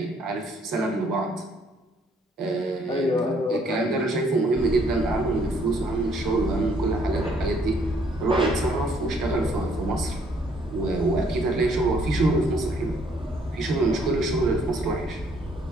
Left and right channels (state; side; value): normal; both; correlation 0.65